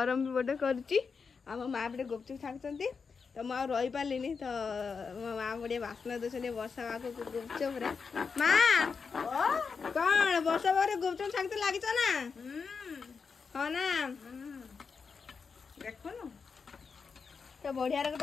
भी गोटे कर माँ पे गुपचुप छाड़ती तो मुझे रही पार्लिनी तो मो माँ गोटे बास्ना दे वर्षा पाग गुपचुप माँ कौन वर्षा पाग गुपचुप छाड़ते लगिच ना हाँ ना देख तो बढ़िया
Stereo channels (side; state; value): right; quieter; 5.4 dB